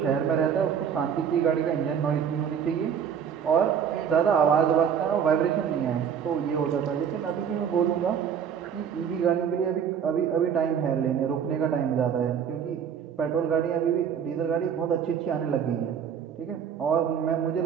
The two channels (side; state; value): left; quieter; 8.0 dB